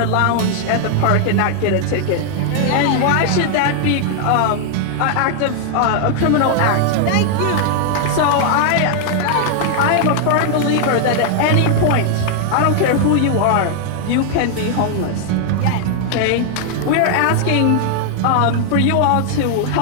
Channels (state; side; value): different; both; correlation 0.00